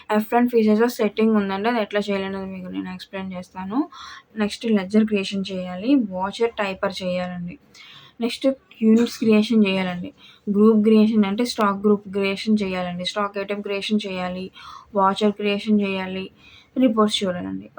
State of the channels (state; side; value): identical; both; correlation 1.00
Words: F1 ఫీచర్స్లో సెట్టింగ్ ఉందండి, అది ఎట్లా చేయాలనేది మీకు నేను ఎక్స్ప్లెయిన్ చేస్తాను. నెక్స్ట్ లెడ్జర్ క్రియేషన్ చేయాలి. వాచర్ టైపర్ చేయాలండి. నెక్స్ట్ యూనిట్స్ క్రియేషన్ చేయాలండి. గ్రూప్ క్రియేషన్ అంటే స్టాక్ గ్రూప్ క్రియేషన్ చేయాలండి. స్టాక్ ఐటెం క్రియేషన్ చేయాలి. వాచర్ క్రియేషన్ చేయాలి. రిపోర్ట్స్ చూడాలండి.